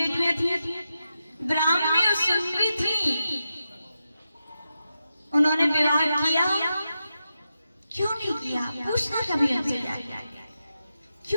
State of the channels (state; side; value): inverted; both; correlation -0.89